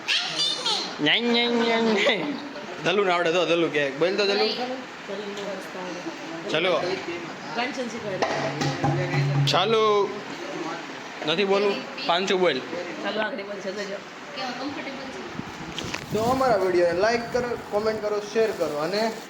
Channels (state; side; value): identical; both; correlation 1.00